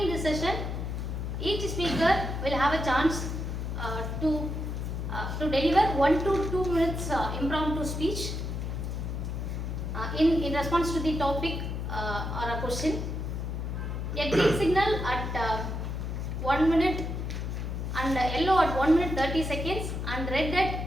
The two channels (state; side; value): noise; left; hum, 3 dB below the sound